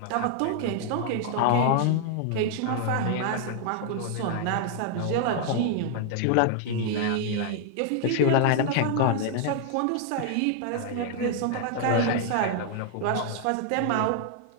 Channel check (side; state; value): both; different; correlation 0.00